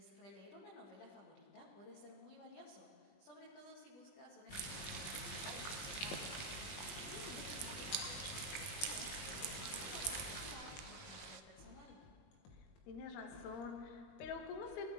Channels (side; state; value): right; late; 20 ms